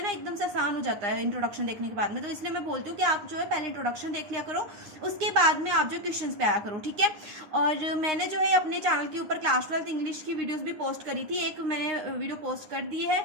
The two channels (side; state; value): left; late; 9.7 ms